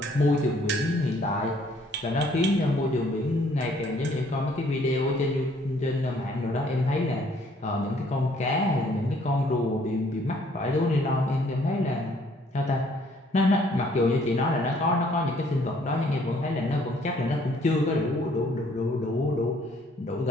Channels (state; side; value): normal; both; correlation 0.62